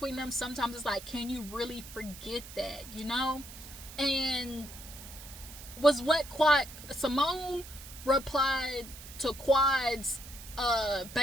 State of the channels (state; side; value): noise; right; hiss, 15 dB below the sound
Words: them. Sometimes it's like, can you really forget that, you know? And was what Simone replied to Quad's